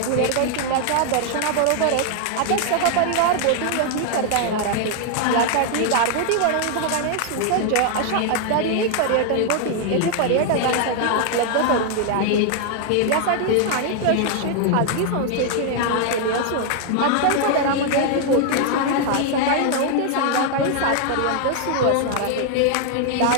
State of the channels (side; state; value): both; different; correlation 0.00